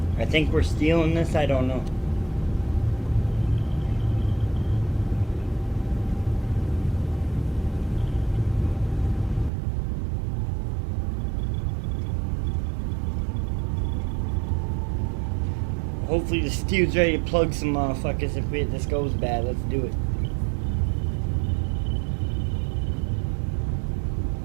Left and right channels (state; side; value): drops out; left; at 9.5 s